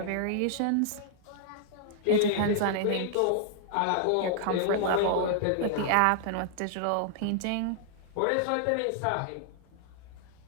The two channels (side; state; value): both; different; correlation -0.01